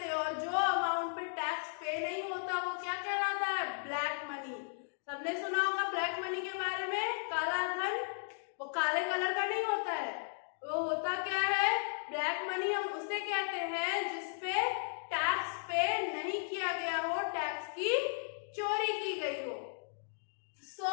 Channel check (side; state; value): right; silent; digital silence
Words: और जो अमाउंट पे टैक्स पे नहीं होता वो क्या कहलाता है, ब्लैक मनी। सबने सुना होगा ब्लैक मनी के बारे में। काला धन वो काले कलर का नहीं होता है, वो होता क्या है, ब्लैक मनी। हम उसे कहते हैं जिसपे टैक्स पे नहीं किया गया हो, टैक्स की चोरी की गई हो। सो